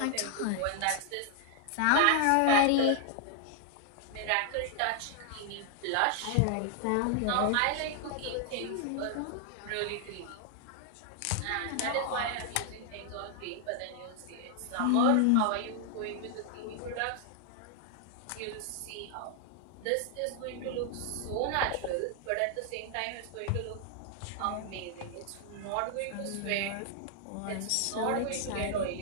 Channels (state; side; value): different; both; correlation 0.00